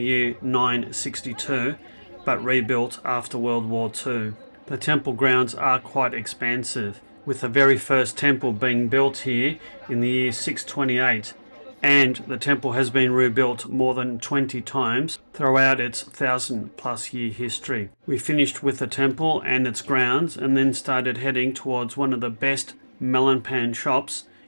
year 962, but rebuilt after World War II. The temple grounds are quite expansive, with the very first temple being built here in the year 628, and the temple has been rebuilt more than 20 times throughout its 1,000+ year history. We finished with the temple and its grounds and then started heading towards one of the best Melonpan shops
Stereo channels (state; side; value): inverted; both; correlation -1.00